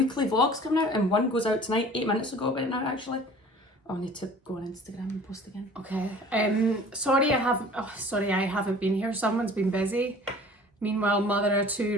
vlogs coming out, and one goes out tonight, 8 minutes ago about now actually. Oh, I need to go on Instagram and post again. Okay. Sorry I haven't been here. Someone's been busy. Meanwhile, mother of 2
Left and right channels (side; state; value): both; normal; correlation 0.47